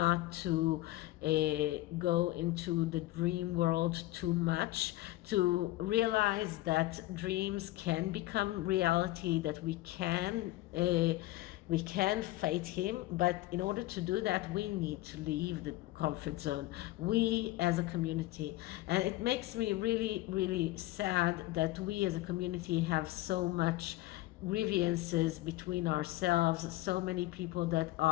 to go into the dream world too much, to realize that dreams can become reality, that we can fight him, but in order to do that, we need to leave the comfort zone, we as a community. And it makes me really, really sad that we as a community have so much grievances between ourselves, so many people that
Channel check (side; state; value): right; quieter; 17.4 dB